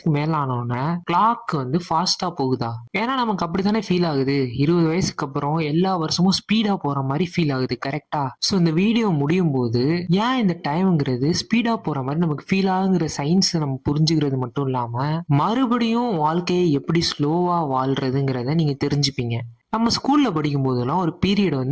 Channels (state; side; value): identical; both; correlation 1.00